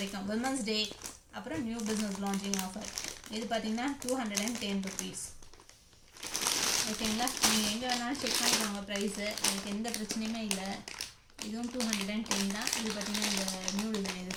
விமன்ஸ் டே. அப்புறம் நியூ பிஸ்னஸ் லான்ச்சிங் ஆஃபர். இது பார்த்தீங்கன்னா 210 rupees. ஓகேங்களா, நீங்கள் எங்கே வேணாலும் செக் பண்ணிக்கோங்க ப்ரைஸு, எனக்கு எந்த பிரச்சனையுமே இல்லை. இதுவும் 210 தான். இது பார்த்தீங்கன்னா இந்த நியூ டிசைன், இது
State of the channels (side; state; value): both; identical; correlation 1.00